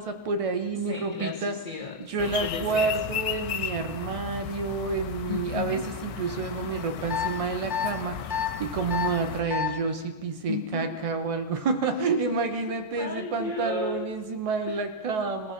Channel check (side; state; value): left; late; 1.6 ms